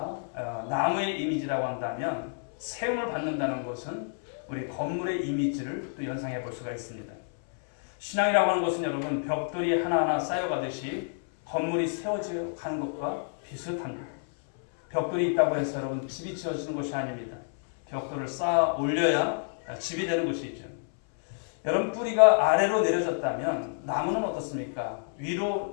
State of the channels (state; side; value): silent; right; 59 dB below the other